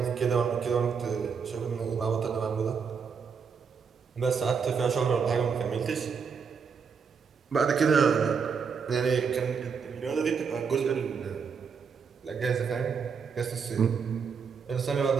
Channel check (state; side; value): quieter; left; 6.1 dB